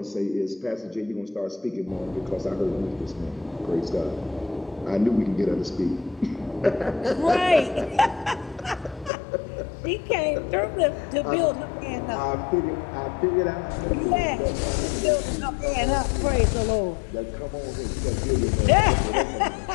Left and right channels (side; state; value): right; drops out; at 9.1 s